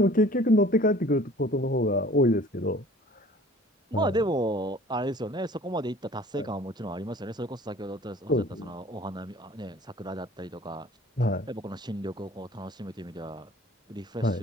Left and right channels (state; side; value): normal; both; correlation 0.49